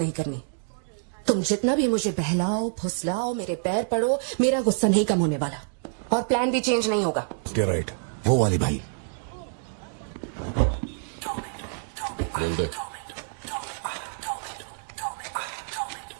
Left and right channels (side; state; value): left; silent; digital silence